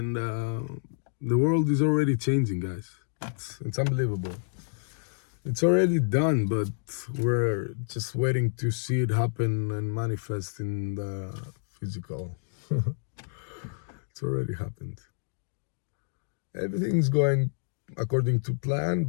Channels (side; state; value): right; silent; digital silence